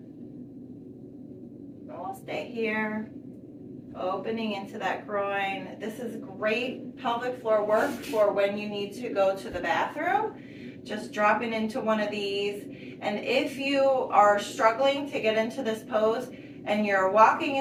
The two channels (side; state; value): both; identical; correlation 1.00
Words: And we'll stay here, opening into that groin. This is great pelvic floor work for when you need to go to the bathroom. Just dropping into one of these. And if you are struggling to get into this pose and you're walking